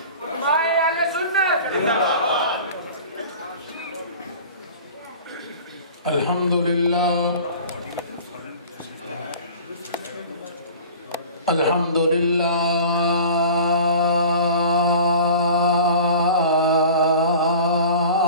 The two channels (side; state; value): both; inverted; correlation -0.41